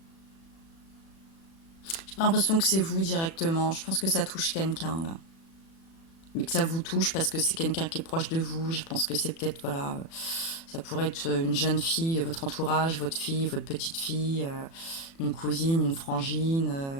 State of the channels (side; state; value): right; late; 36 ms